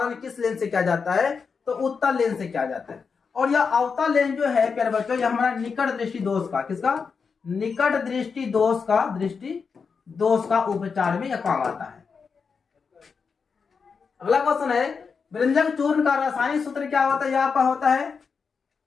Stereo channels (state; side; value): quieter; right; 5.5 dB